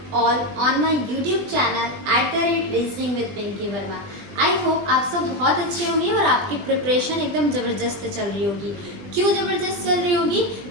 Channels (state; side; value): late; left; 20 ms